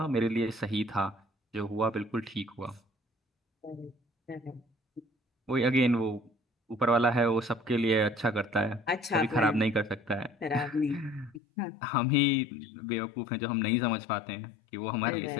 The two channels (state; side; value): drops out; right; at 11.4 s